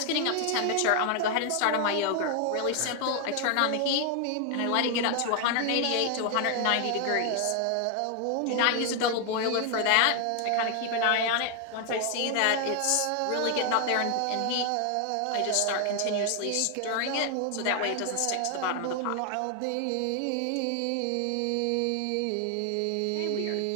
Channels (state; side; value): different; both; correlation 0.00